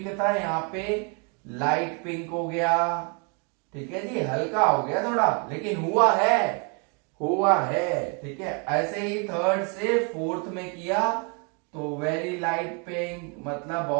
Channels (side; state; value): left; quieter; 35.0 dB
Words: था, यहां पे लाइट पिंक हो गया, ठीक है जी, हल्का हो गया थोड़ा, लेकिन हुआ है, ठीक है। ऐसे ही थर्ड से फोर्थ में किया तो वेरी लाइट पिंक, मतलब